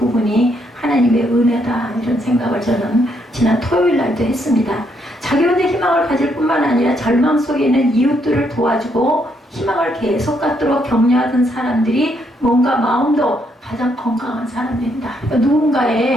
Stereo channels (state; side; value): normal; both; correlation 0.74